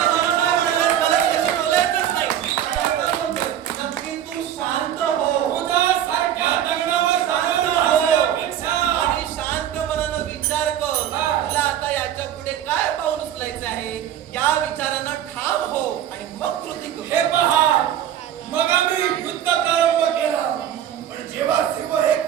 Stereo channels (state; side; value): quieter; left; 10.6 dB